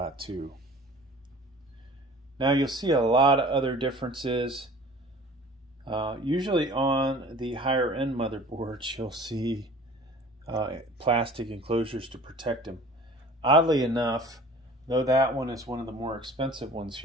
Now you'll see a lot of other differences. Usually on the higher end motherboards, you'll see plastic enclosures to protect them. Oddly enough, though that one is one of the more expensive ones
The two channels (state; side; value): normal; both; correlation 0.45